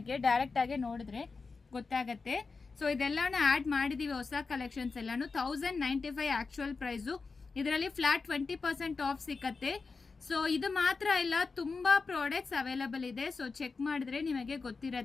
ಡೈರೆಕ್ಟ್ ಆಗಿ ನೋಡಿದ್ರೆ ಗೊತ್ತಾಗತ್ತೆ. ಸೊ ಇದೆಲ್ಲಾನು ಆಡ್ ಮಾಡಿದೀವಿ, ಹೊಸ ಕಲೆಕ್ಷನ್ಸ್ ಎಲ್ಲಾನು 1095 ಆಕ್ಚುಯಲ್ ಪ್ರೈಸು. ಇದರಲ್ಲಿ ಫ್ಲಾಟ್ 20% ಆಫ್ ಸಿಕ್ಕತ್ತೆ. ಸೊ ಇದು ಮಾತ್ರ ಇಲ್ಲ, ತುಂಬಾ ಪ್ರಾಡಕ್ಟ್ಸ್ ಅವೈಲಬಲ್ ಇದೆ. ಸೊ ಚೆಕ್ ಮಾಡಿದ್ರೆ ನಿಮಗೆ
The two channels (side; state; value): right; quieter; 4.4 dB